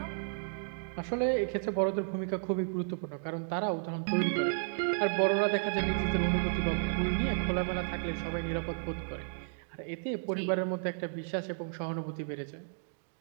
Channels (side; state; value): left; silent; digital silence